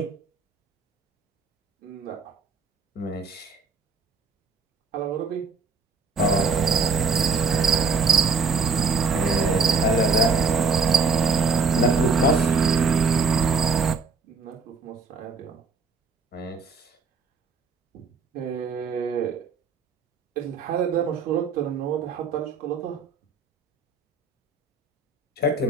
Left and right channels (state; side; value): quieter; left; 4.5 dB